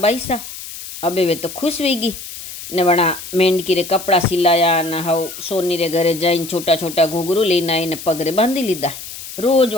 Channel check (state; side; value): noise; left; hiss, 11 dB below the sound